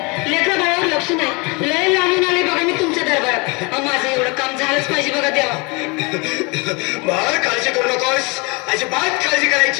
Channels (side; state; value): right; quieter; 28.9 dB